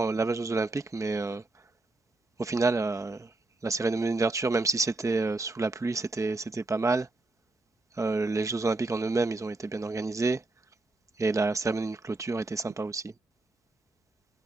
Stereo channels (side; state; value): left; quieter; 3.1 dB